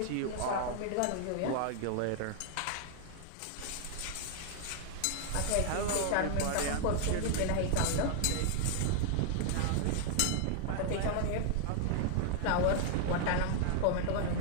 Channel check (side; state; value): both; different; correlation 0.00